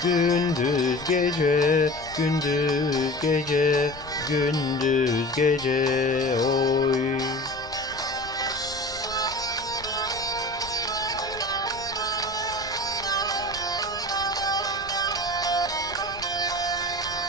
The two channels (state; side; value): noise; left; rumble, 18 dB below the sound